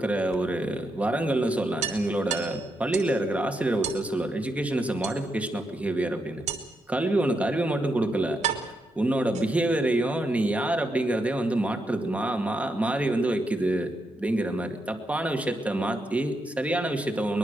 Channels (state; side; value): normal; both; correlation 0.82